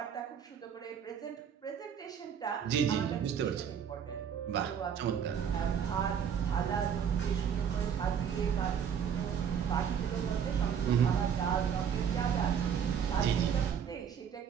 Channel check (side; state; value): left; quieter; 7.9 dB